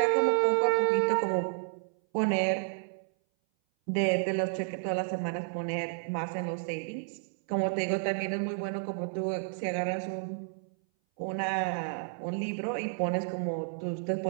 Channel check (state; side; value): silent; left; 57 dB below the other